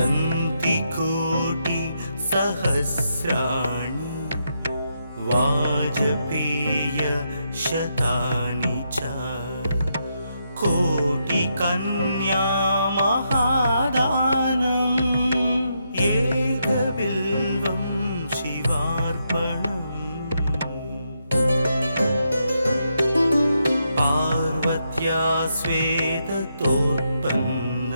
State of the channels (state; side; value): inverted; both; correlation -0.81